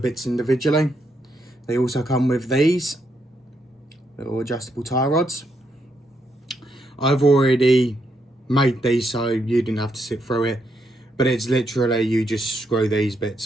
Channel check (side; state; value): both; normal; correlation 0.79